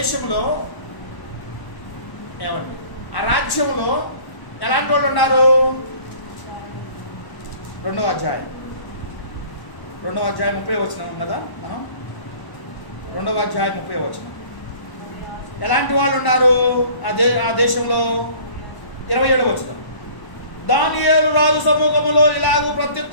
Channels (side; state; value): right; late; 1.0 ms